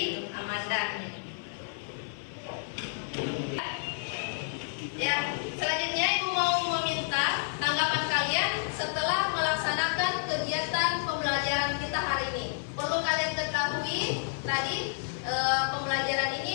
Amanda. Ya, selanjutnya Ibu mau meminta tanggapan kalian setelah melaksanakan kegiatan pembelajaran kita hari ini. Perlu kalian ketahui tadi pembelajaran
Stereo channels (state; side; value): silent; right; 58 dB below the other